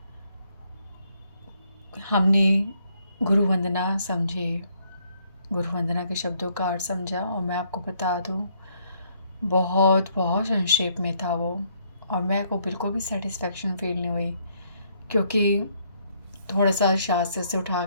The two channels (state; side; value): inverted; both; correlation -0.70